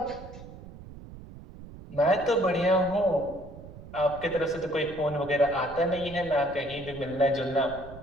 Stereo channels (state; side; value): noise; right; rumble, 16 dB below the sound